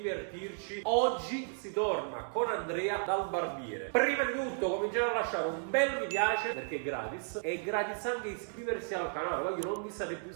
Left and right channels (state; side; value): silent; left; 55 dB below the other